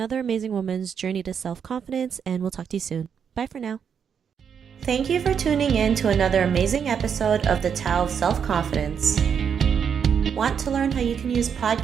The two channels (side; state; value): left; quieter; 7.4 dB